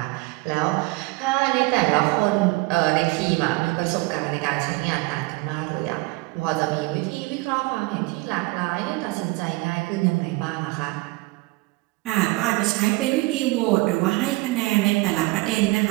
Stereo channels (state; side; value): quieter; left; 23.0 dB